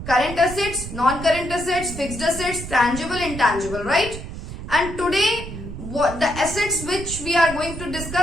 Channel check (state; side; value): noise; right; rumble, 9 dB below the sound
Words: current assets, non-current assets, fixed assets, tangible, intangible, right? And today what the assets which we are going to